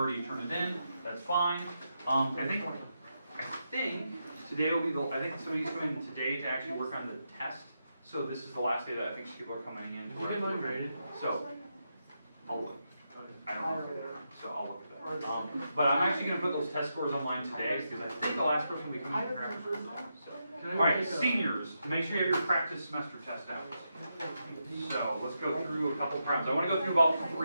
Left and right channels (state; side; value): inverted; both; correlation -0.85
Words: turned it in. That's fine. I think today will be I think somebody's coming today to actually work on the test. So this is the last day that I think people are coming in. Did you get mine graded? So, I'll look. I don't know. So I'll look at that. But I'm actually going to put those test scores online today because I think the last person will be coming to practice. So. All right, seniors, make sure you have your practice semester test out. So let's go through a couple problems. I want to go through about